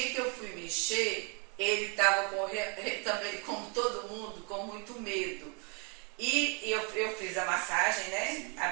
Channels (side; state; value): left; quieter; 34.9 dB